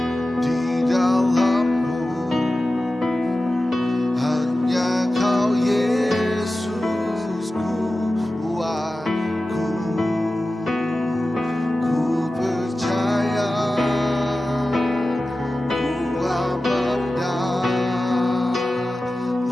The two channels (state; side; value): normal; both; correlation 0.95